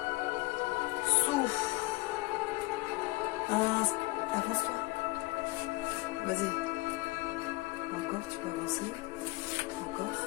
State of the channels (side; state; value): right; quieter; 21.9 dB